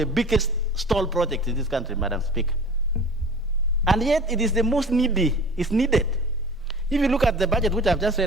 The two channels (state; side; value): normal; both; correlation 0.42